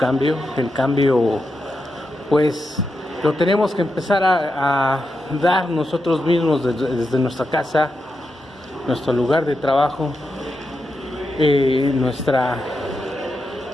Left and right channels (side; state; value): both; normal; correlation 0.87